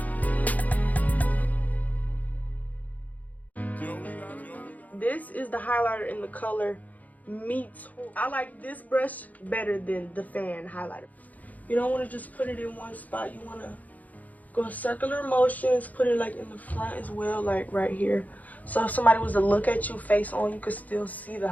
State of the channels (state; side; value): late; right; 0.078 ms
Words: This is the highlighter in the color Meat. I like this brush better than the fan highlighter. You don't want to just put it in one spot. You want to go circular motions, put it like in the front as well, like right here. So if somebody was to look at you face on, you could still see the